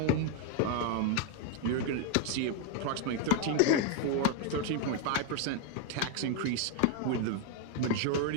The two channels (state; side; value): different; both; correlation 0.01